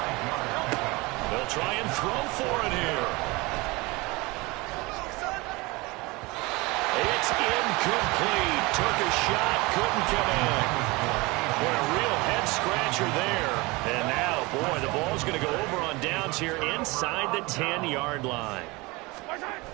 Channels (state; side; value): quieter; left; 24.0 dB